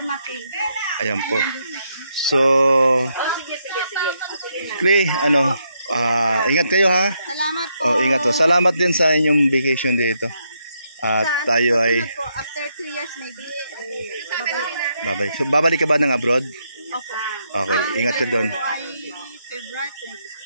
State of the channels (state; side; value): inverted; both; correlation -0.78